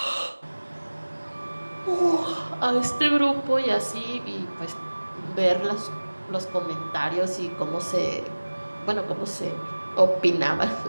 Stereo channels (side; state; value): both; inverted; correlation -1.00